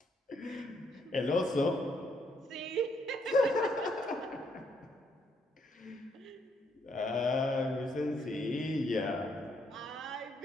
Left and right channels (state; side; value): normal; both; correlation 0.72